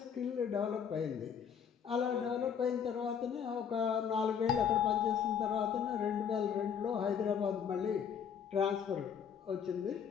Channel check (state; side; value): quieter; right; 7.6 dB